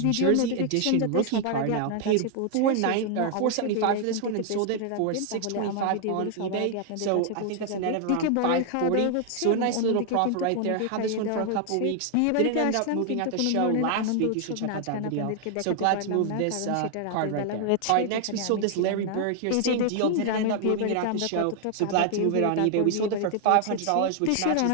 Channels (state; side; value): different; both; correlation 0.00